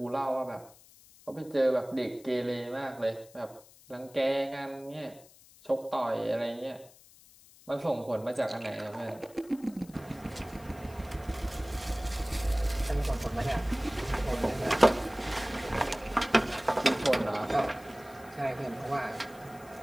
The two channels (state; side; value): noise; left; hiss, 24 dB below the sound